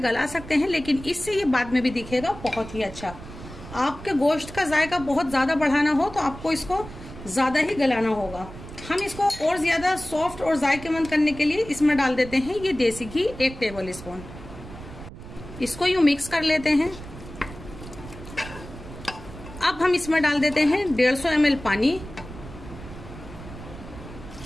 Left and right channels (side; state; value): right; noise; rumble, 14 dB below the sound